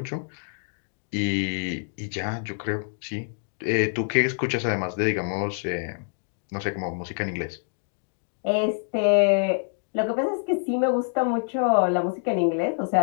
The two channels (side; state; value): right; silent; digital silence